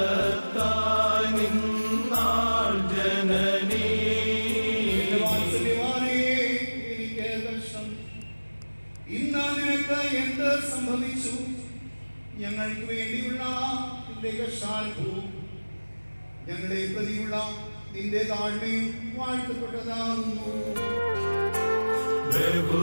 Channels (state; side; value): inverted; both; correlation -1.00